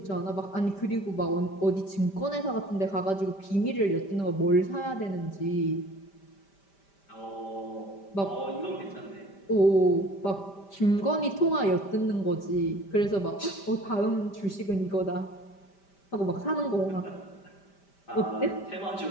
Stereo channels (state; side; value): late; right; 5.1 ms